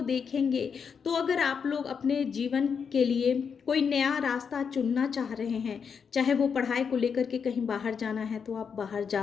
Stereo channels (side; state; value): right; quieter; 6.4 dB